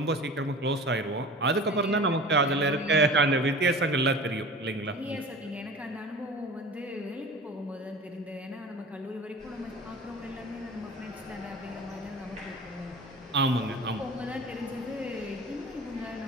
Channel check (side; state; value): both; normal; correlation 0.38